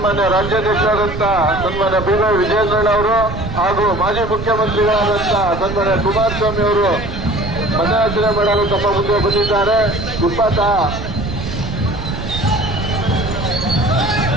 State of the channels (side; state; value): right; noise; rumble, 7 dB below the sound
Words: ರಾಜ್ಯಾಧ್ಯಕ್ಷರಾದಂತ ಸನ್ಮಾನ್ಯ ಬಿ.ವೈ. ವಿಜಯೇಂದ್ರಣ್ಣ ಅವರು ಹಾಗೂ ಮಾಜಿ ಮುಖ್ಯಮಂತ್ರಿಗಳಾದಂತ ಸನ್ಮಾನ್ಯ ಕುಮಾರಸ್ವಾಮಿ ಅವರು ಮತಯಾಚನೆ ಮಾಡಲು ತಮ್ಮ ಮುಂದೆ ಬಂದಿದ್ದಾರೆ.